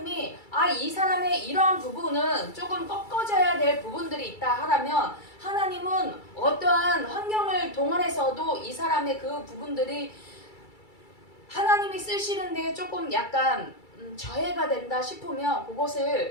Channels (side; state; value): right; late; 2.3 ms